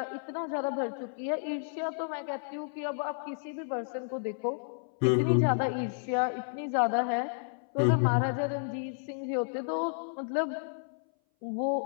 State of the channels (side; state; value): right; silent; 57 dB below the other